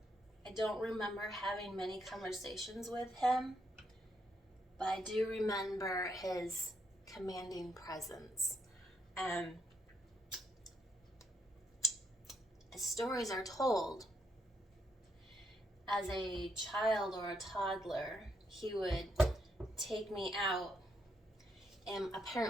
I don't remember having many conversations with him, but I do remember his commanding presence. As stories are told, as a child or a toddler, he would take me out in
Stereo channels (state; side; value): normal; both; correlation 0.76